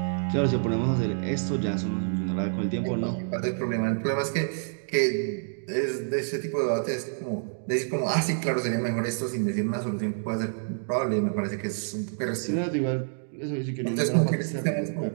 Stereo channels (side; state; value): left; silent; digital silence